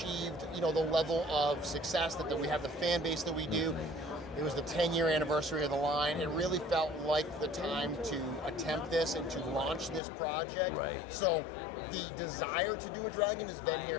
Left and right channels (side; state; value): right; drops out; at 10.0 s